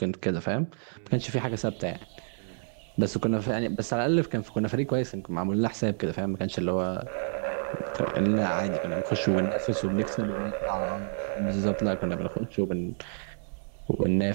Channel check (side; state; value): left; silent; digital silence